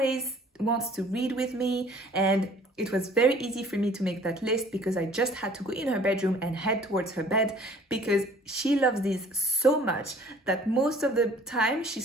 wants to read with me, and it was very easy for me to make that list because I just had to go in her bedroom and head towards her bed because she loves these so much that most of the time she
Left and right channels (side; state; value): both; normal; correlation 0.53